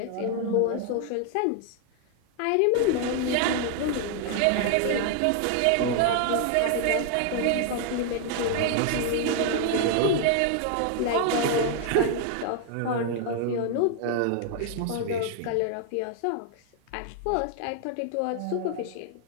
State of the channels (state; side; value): different; both; correlation 0.00